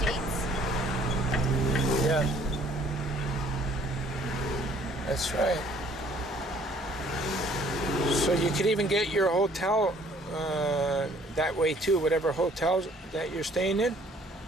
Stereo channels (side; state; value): both; normal; correlation 0.58